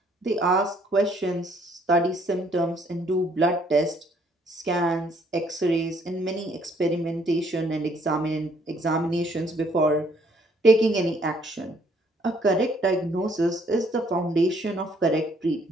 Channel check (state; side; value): normal; both; correlation 0.65